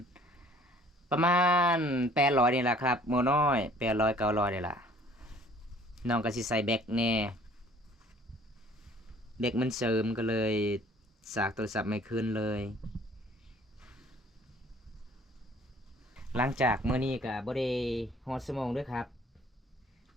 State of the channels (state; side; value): normal; both; correlation 0.55